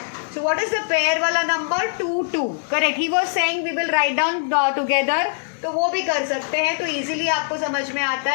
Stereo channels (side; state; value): right; silent; digital silence